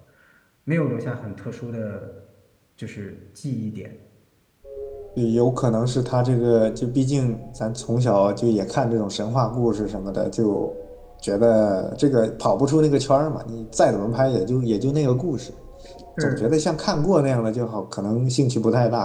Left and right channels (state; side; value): identical; both; correlation 1.00